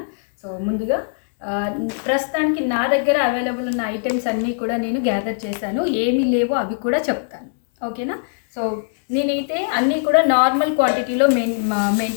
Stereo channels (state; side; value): silent; right; digital silence